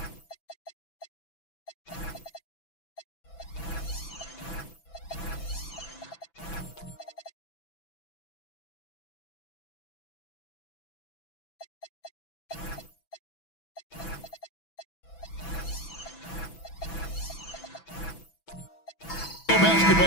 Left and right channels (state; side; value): late; right; 6.0 ms